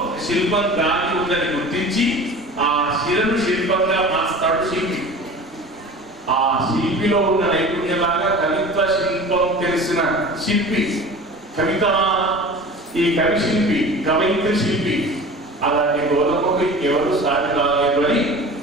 శిల్పం దాగి ఉందని గుర్తించి ఆ శిలను శిల్పంగా మార్స్తాడు శిల్పి. ఆ శిల్పిలో ఉన్న నైపుణ్యంలాగా కవిత్వ శిల్పం తెలిసిన శిల్పి కవిత, ఈ కవి శిల్పి, కవయిత్రి శిల్పి. అలాంటి గోధుమకు ఎవరు సాటి రాలేదు అని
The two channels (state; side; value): normal; both; correlation 0.38